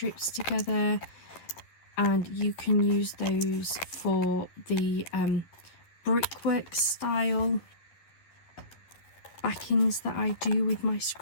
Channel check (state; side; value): late; right; 11 ms